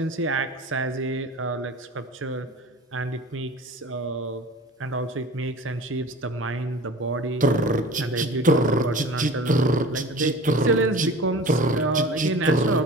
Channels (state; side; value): normal; both; correlation 0.40